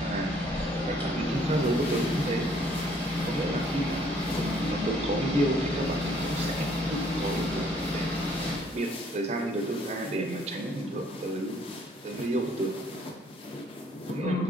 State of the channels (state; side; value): normal; both; correlation 0.62